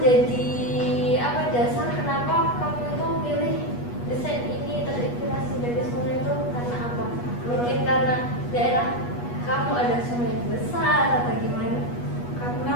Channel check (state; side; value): late; right; 8.3 ms